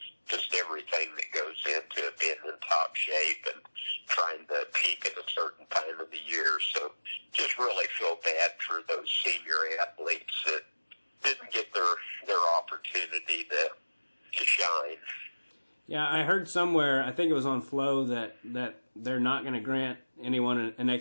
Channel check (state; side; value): inverted; both; correlation -1.00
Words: just everything that goes into it, being in top shape and trying to peak at a certain time of the year. So, just really feel bad for those senior athletes that didn't get their opportunity to shine. Yeah, I heard somewhere, I think it was on Flow, that they're not going to grant anyone an